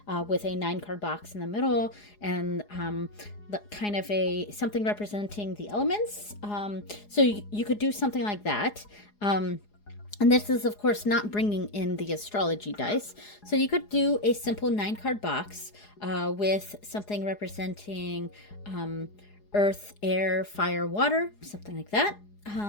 with a 9 card box in the middle and kind of something representing the elements. So you could do something like that. And this is, of course, not bringing in the astrology dice. So you could do a simple 9 card box with something representing earth, air, fire, water, something like that.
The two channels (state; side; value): late; right; 4.8 ms